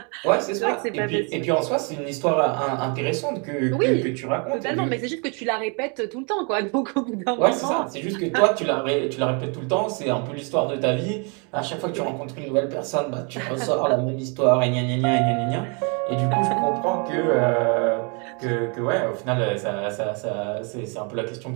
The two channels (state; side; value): quieter; left; 35.0 dB